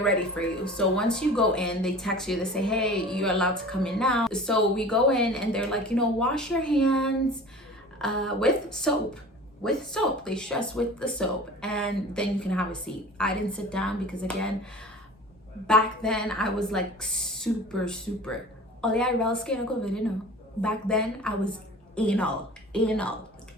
for you. So once you go in, they text you, they say, hey, you're allowed to come in now. So we go in and they're like, you know, wash your hands with soap. They stress with the soap, and then you can have a seat. I didn't sit down because, again, back then I was like super back then I was anal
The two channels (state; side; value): normal; both; correlation 0.41